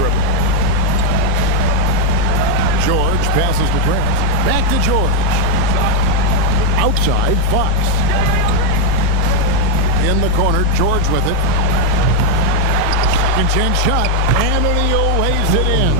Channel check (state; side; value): different; both; correlation 0.02